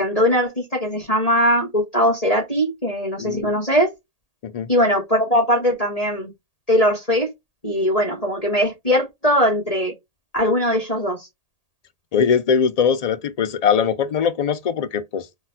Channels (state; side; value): late; right; 1.8 ms